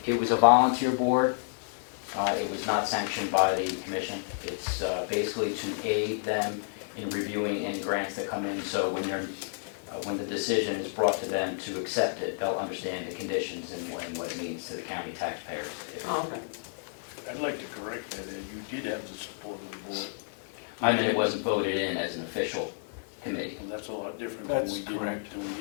It was a volunteer board. It was not sanctioned by the commission. It's basically to aid them in reviewing any grants that come in, so when the decision is brought to them to accept it, they'll understand the conditions and what it means to the county taxpayers. Oh, okay. I'd like to correct that, Ed, you did have the support of the board. I mean, it wasn't voted in as an official committee. Well, that's a lot different than That's we correct.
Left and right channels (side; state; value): right; silent; 57 dB below the other